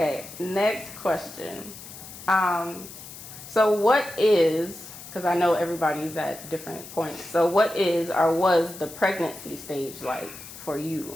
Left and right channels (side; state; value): left; noise; hiss, 14 dB below the sound